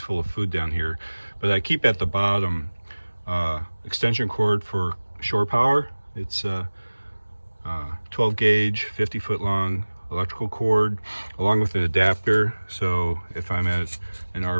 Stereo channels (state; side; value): inverted; both; correlation -1.00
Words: of food down here, but I keep at the bottom extension cord for shore power. It's 12 gauge, 50 foot long electrical cord, along with an adapter. So if I'm at an